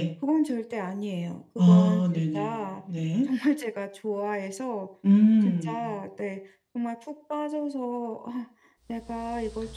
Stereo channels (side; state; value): both; identical; correlation 1.00